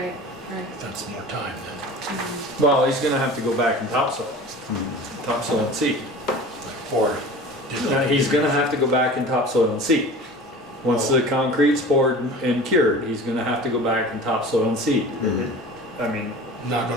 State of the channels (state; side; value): normal; both; correlation 0.38